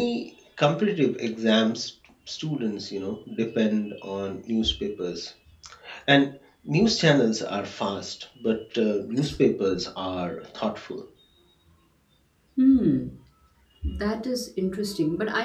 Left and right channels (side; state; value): both; identical; correlation 1.00